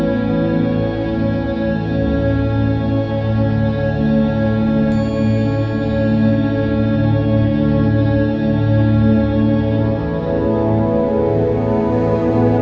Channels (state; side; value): identical; both; correlation 1.00